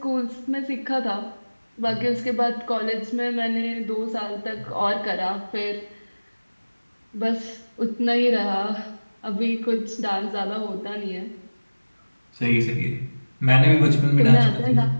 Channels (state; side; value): inverted; both; correlation -1.00